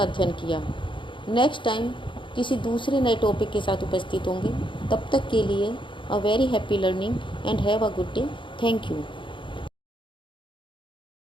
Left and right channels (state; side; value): late; right; 0.24 ms